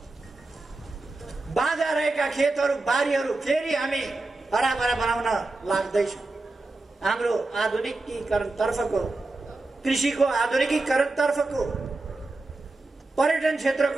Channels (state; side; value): quieter; left; 3.2 dB